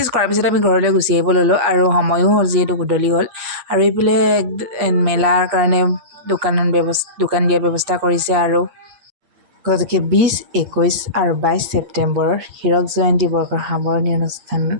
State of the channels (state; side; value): late; left; 8.6 ms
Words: কৰাৰ পিছত আমি ঘৰলৈ গুচি আহিব ল'লোঁ আৰু সময়ো হ'ল যিহেতু গধূলি হ'ল আৰু এইফালে মেলাৰ কাৰণে দোকান দিয়াৰ ব্যৱস্থা কৰিছে আৰু গতিকে 20, 21 আৰু 22 ছেপ্টেম্বৰৰ হীৰক জয়ন্তী বৰ্ষৰ সামৰণি অনুষ্ঠান